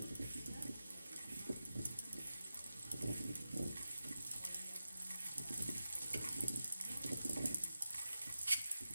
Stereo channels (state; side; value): inverted; both; correlation -0.94